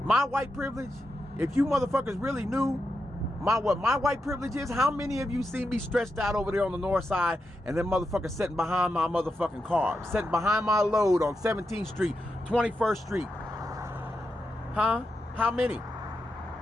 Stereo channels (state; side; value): normal; both; correlation 0.87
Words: if you motherfuckers really knew what my white privilege is, how many of you see me stretched out over there on the north side and then motherfuckers sitting behind my motherfucking car, sitting behind my load on 17th Street, 21st Street? Huh? How many?